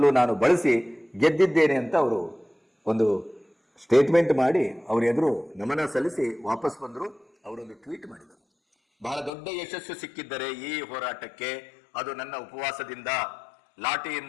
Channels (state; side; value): drops out; right; at 9.3 s